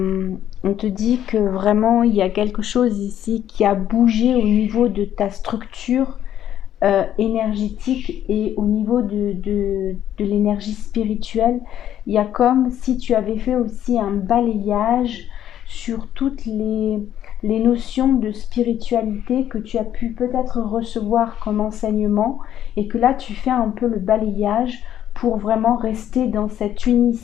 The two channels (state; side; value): quieter; right; 11.0 dB